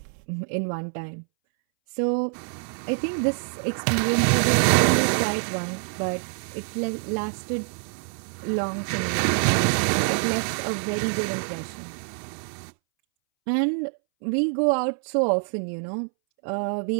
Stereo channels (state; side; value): silent; left; 61 dB below the other